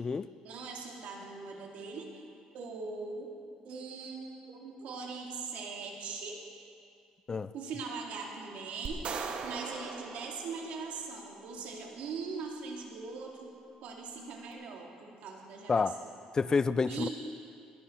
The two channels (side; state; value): both; normal; correlation 0.72